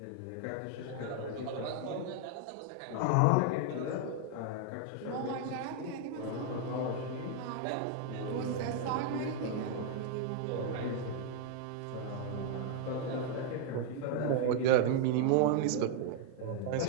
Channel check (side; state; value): both; different; correlation 0.00